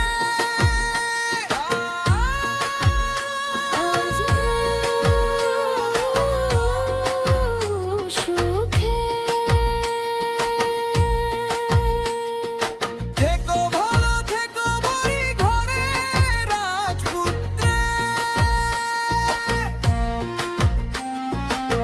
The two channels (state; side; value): identical; both; correlation 1.00